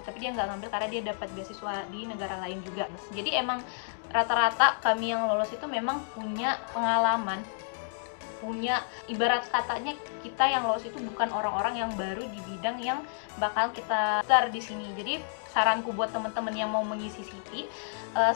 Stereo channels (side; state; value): right; silent; digital silence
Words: tapi dia nggak ngambil karena dia dapat beasiswa di negara lain juga. Jadi emang rata-rata kami yang lolos itu memang punya pengalaman, punya, ibarat katanya kita yang lolos itu bukan orang-orang yang baru di bidang yang bakal kita daftar di sini. Jadi saranku buat teman-teman yang mau mengisi CV,